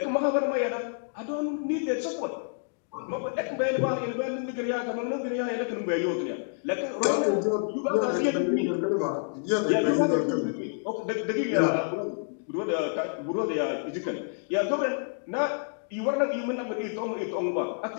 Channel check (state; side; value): silent; right; digital silence